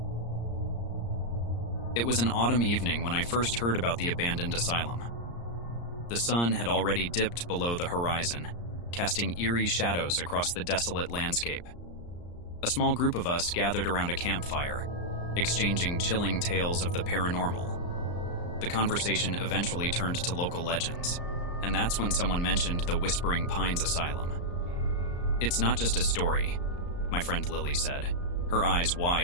It was an autumn evening when I first heard about the Abandoned Asylum. The sun had already dipped below the horizon, casting eerie shadows across the desolate landscape. A small group of us gathered around a campfire, exchanging chilling tales of the paranormal. The conversation eventually turned to local legends, and that's when someone mentioned the Whispering Pines Asylum. "It's not just a story," my friend Lily said, her eyes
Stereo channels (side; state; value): right; late; 34 ms